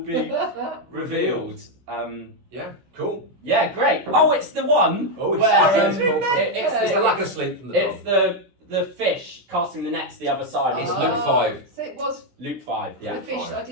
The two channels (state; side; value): late; left; 17 ms